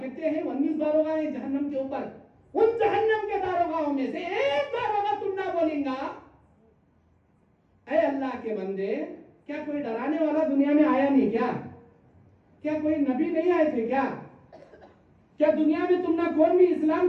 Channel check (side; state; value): both; identical; correlation 1.00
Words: ہیں 19 داروغہ ہیں جہنم کے اوپر, ان جہنم کے داروغاؤں میں سے ایک داروغہ تم نہ بولیں گا, اے اللہ کے بندے کیا کوئی ڈرانے والا دنیا میں آیا نہیں کیا, کیا کوئی نبی نہیں آئے تھے کیا, کیا دنیا میں تم نہ کون بھی